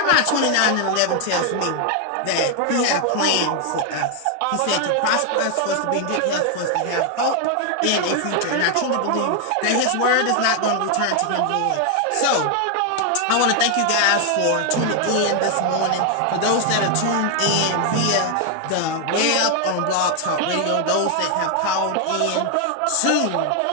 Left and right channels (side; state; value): both; different; correlation 0.00